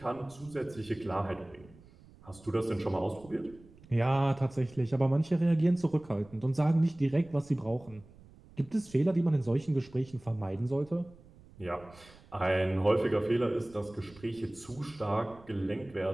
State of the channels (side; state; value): right; noise; rumble, 24 dB below the sound